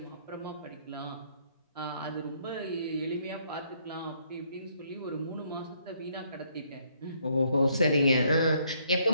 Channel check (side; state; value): both; inverted; correlation -0.69